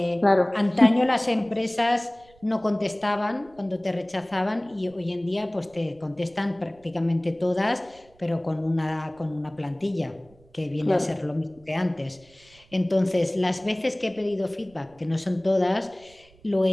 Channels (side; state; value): right; noise; rumble, 29 dB below the sound